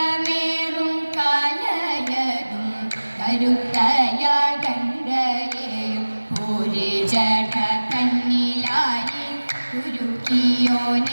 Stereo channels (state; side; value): inverted; both; correlation -1.00